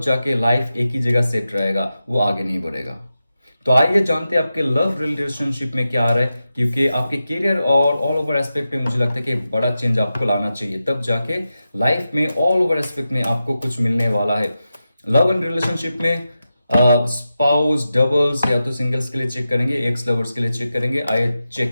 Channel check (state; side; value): inverted; both; correlation -0.91